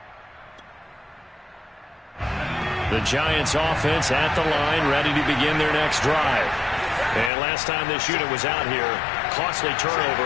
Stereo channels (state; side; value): drops out; right; at 7.3 s